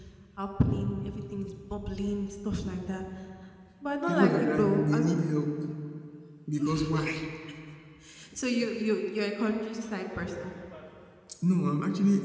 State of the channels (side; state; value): both; identical; correlation 1.00